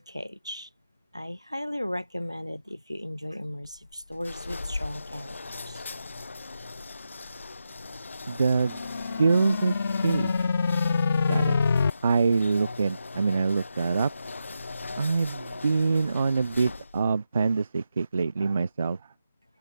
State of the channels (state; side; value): inverted; both; correlation -0.87